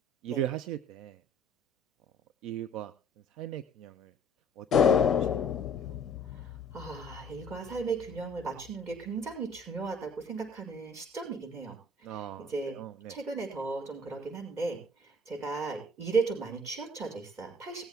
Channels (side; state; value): both; normal; correlation 0.52